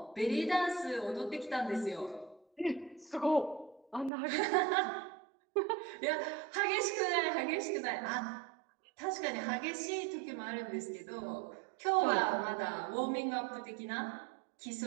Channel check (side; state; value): left; drops out; at 4.1 s